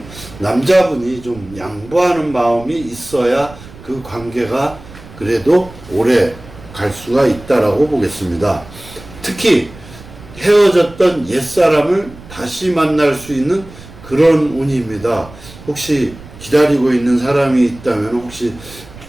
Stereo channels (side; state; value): right; noise; rumble, 18 dB below the sound